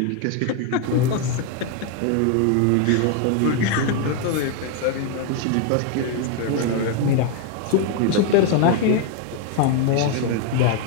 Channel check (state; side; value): different; both; correlation 0.00